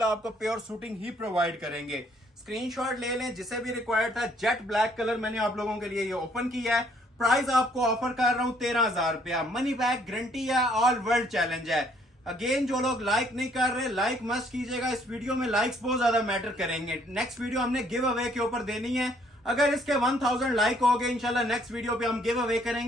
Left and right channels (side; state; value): both; normal; correlation 0.64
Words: आपको प्योर शूटिंग ही प्रोवाइड करेंगे। स्क्रीनशॉट ले लें, जिसे भी रिक्वायर्ड था। जेट ब्लैक कलर मैंने आप लोगों के लिए ये ओपन किया है। प्राइस आपको ऑफर कर रहा हूं 13,000 रुपया, मनी बैक गारंटी है, ऑल वर्ल्ड चैलेंज है। अगेन जो लोग लाइक नहीं कर रहे, लाइक मस्ट कीजिएगा, इस वीडियो में लाइक्स बहुत ज्यादा मैटर करेंगे। नेक्स्ट वीडियो हमने गिव अवे के ऊपर देनी है, अगर इसके 1000 लाइक हो गए इंशाल्लाह नेक्स्ट वीडियो पे हम गिव अवे